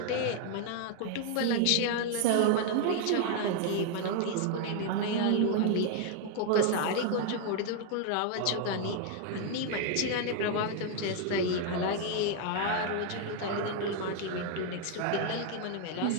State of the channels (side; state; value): both; different; correlation 0.00